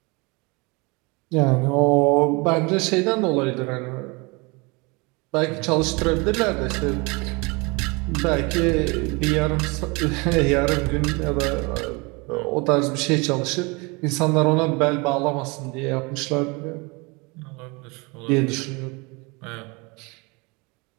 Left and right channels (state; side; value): quieter; left; 27.9 dB